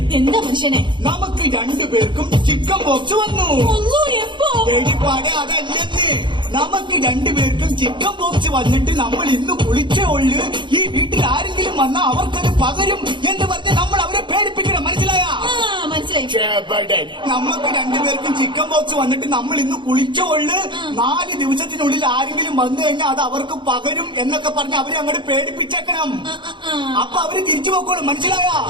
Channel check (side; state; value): left; late; 0.23 ms